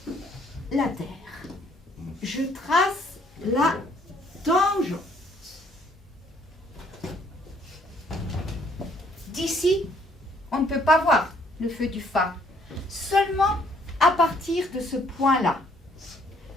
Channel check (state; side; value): normal; both; correlation 0.64